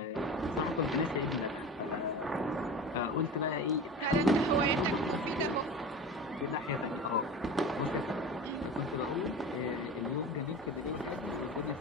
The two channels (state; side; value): normal; both; correlation 0.32